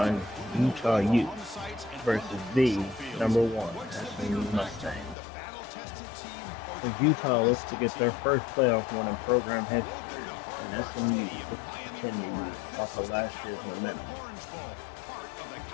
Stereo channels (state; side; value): drops out; right; at 5.2 s